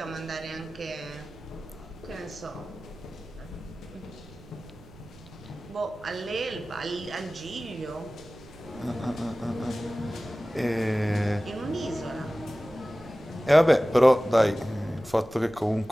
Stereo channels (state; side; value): noise; right; rumble, 21 dB below the sound